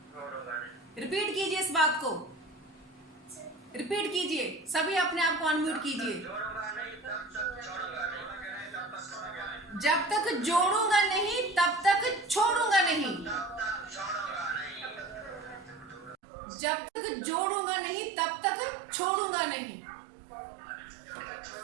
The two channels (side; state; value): left; drops out; at 16.2 s